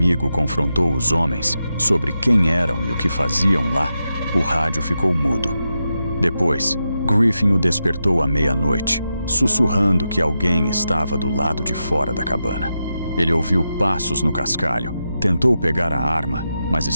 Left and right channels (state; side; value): inverted; both; correlation -0.88